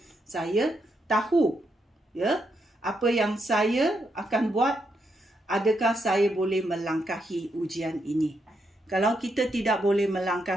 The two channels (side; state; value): both; normal; correlation 0.80